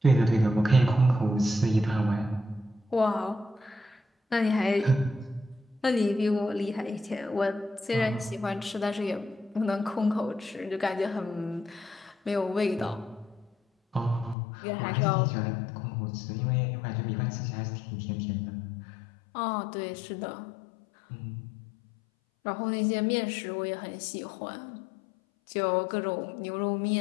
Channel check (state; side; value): drops out; right; at 14.4 s